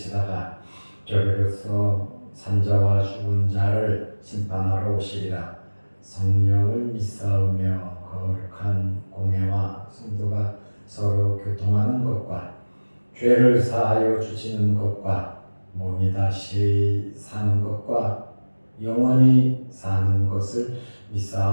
저리로서 산자와 죽은 자를 심판하러 오시리라. 성령을 믿사오며 거룩한 공회와 성도가 서로 교통하는 것과 죄를 사하여 주시는 것과 몸이 다시 사는 것과 영원히 사는 것을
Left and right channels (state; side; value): inverted; both; correlation -1.00